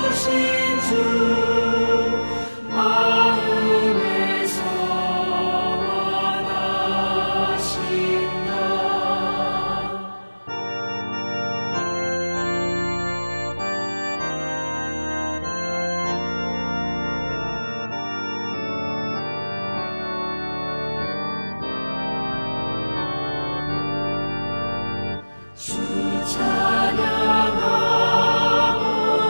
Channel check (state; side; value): inverted; both; correlation -1.00